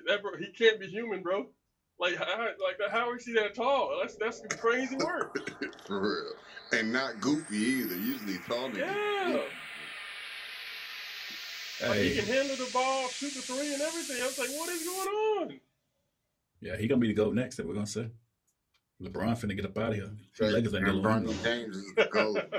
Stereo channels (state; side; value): identical; both; correlation 1.00